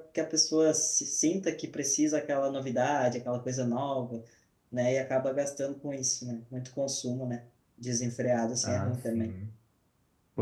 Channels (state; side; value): identical; both; correlation 1.00